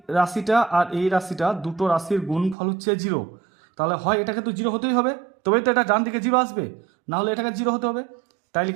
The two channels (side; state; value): left; drops out; at 2.6 s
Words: রাশিটা আর এই রাশিটা দুটো রাশির গুণফল হচ্ছে 0। তাহলে হয় এটাকে তো 0 হতেই হবে, তবেই তো এটা ডান দিকে 0 আসবে, না হলে এটাকে 0 হতে হবে। তাই